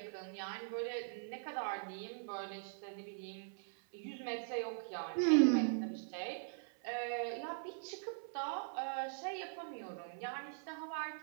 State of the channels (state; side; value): silent; left; 50 dB below the other